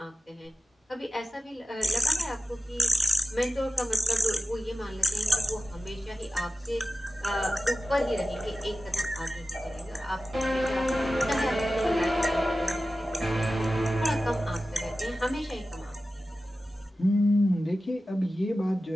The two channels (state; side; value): normal; both; correlation 0.93